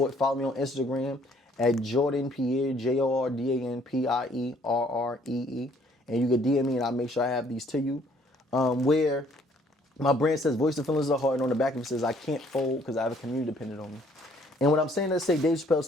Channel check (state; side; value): normal; both; correlation 0.62